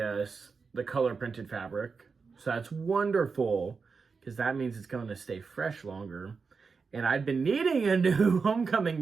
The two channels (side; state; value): left; quieter; 5.0 dB